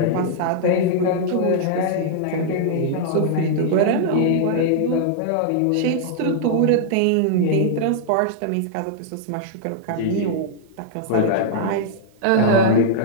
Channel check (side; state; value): both; different; correlation -0.01